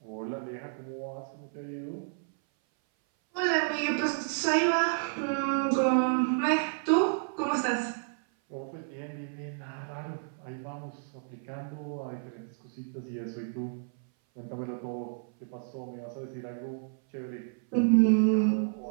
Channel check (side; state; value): left; silent; 57 dB below the other